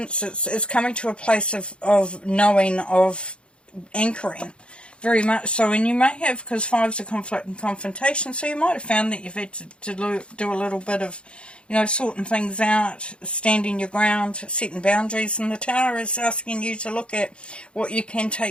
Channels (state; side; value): late; right; 0.057 ms